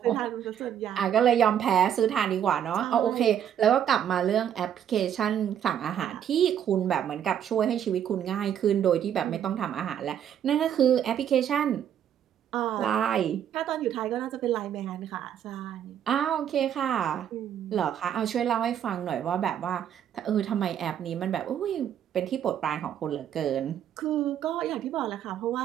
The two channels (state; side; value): quieter; left; 9.6 dB